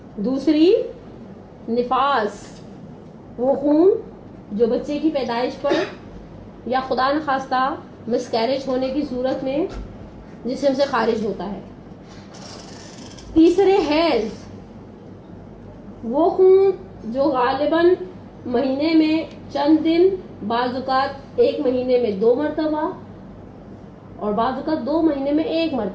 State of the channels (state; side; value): identical; both; correlation 1.00